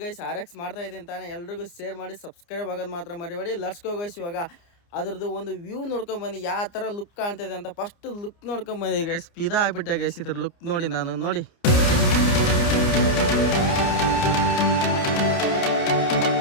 ಗೈಸ್ RX ಮಾಡ್ತಾ ಇದ್ದೀನಿ ತಾನೇ. ಎಲ್ರಿಗೂ ಶೇರ್ ಮಾಡಿ, ಸಬ್ಸ್ಕ್ರೈಬ್ ಆಗೋದು ಮಾತ್ರ ಮರಿಬೇಡಿ. Let's go guys. ಇವಾಗ ಅದ್ರದ್ದು ಒಂದು ವ್ಯೂ ನೋಡ್ಕೊಂಬನ್ನಿ, ಯಾವ ಥರ ಲುಕ್ ಕಾಣ್ತಿದೆ ಅಂತ. ಫಸ್ಟ್ ಲುಕ್ ನೋಡ್ಕೊಂಬನ್ನಿ ಗೈಸ್. ಪಿದಾ ಆಗಿಬಿಟ್ಟೆ ಗೈಸ್ ಇದ್ರ ಲುಕ್ ನೋಡಿ. ನೋಡಿ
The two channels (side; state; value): right; late; 29 ms